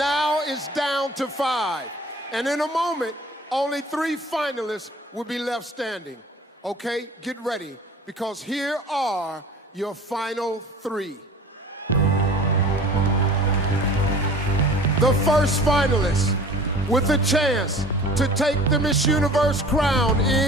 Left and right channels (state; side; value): normal; both; correlation 0.44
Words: it's down to 5. And in a moment, only 3 finalists will be left standing. Okay, get ready, because here are your final 3. The first finalist with a chance to take the Miss Universe crown